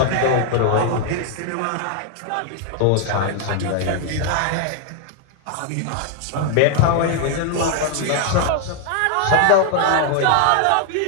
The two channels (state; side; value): different; both; correlation 0.00